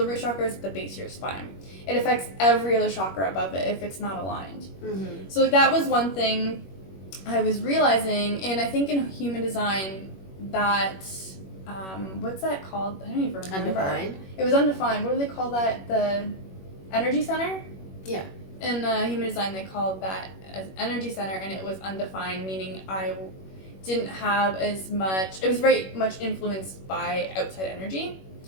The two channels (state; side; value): late; right; 21 ms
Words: root chakra is at the base of your spine. It affects every other chakra above it if it's not aligned. So that was one thing I was realizing, and I think in human design that, what's that called? I don't even remember. Undefined? It was undefined. What do they call that? The energy center? Yeah. In human design, they called that as energy center, and it was undefined, meaning I didn't have as much, it was very much influenced by outside energy.